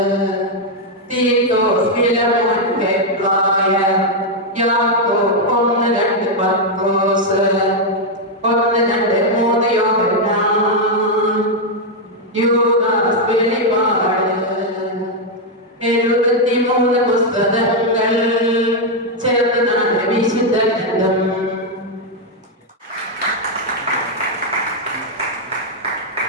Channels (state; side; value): normal; both; correlation 0.00